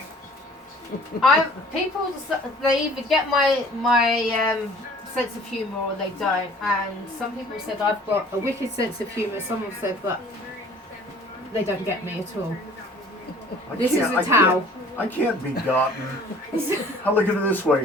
People, they either get my sense of humour or they don't. And some people said I've got a wicked sense of humour. Some have said that they don't get me at all. This is a towel. I can't be gotten. I look at it this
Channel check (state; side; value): normal; both; correlation 0.51